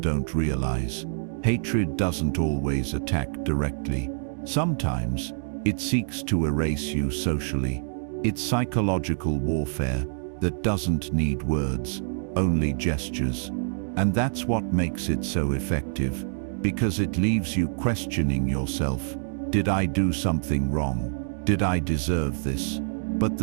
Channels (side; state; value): left; silent; digital silence